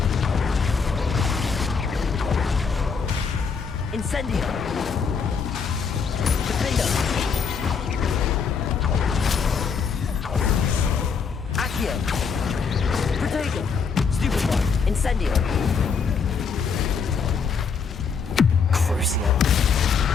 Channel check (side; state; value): right; quieter; 5.7 dB